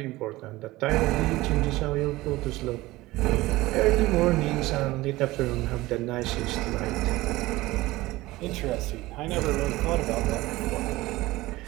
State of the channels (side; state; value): left; quieter; 18.9 dB